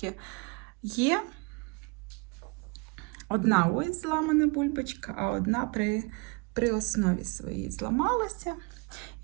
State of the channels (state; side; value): quieter; left; 30.5 dB